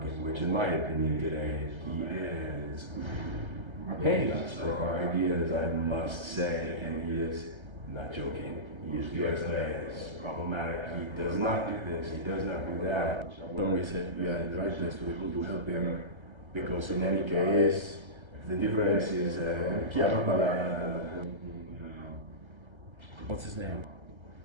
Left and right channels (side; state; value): left; late; 1.3 ms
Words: in which, in my opinion, today he is paying us for our ideas, I must say, and he is not joking. He is problematic. He does not do this. He does not do that. When we said we had to write this, we will help him, because in any case, the difference is what's his name?